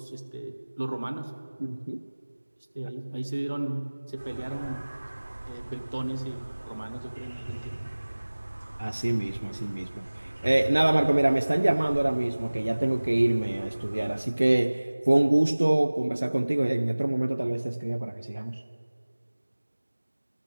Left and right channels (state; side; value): inverted; both; correlation -1.00